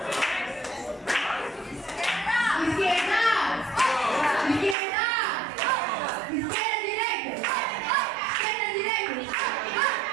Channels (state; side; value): drops out; left; at 4.8 s